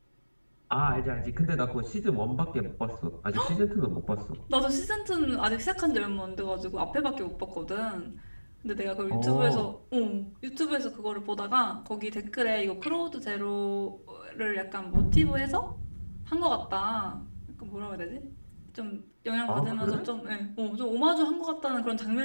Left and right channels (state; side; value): inverted; both; correlation -1.00